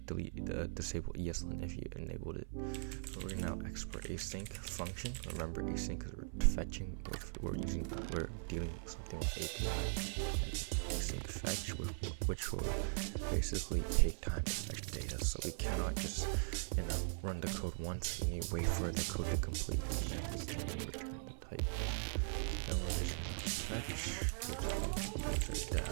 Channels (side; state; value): left; silent; 51 dB below the other